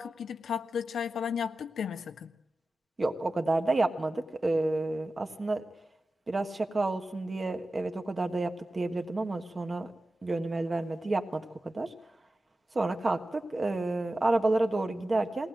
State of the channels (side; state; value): both; normal; correlation 0.94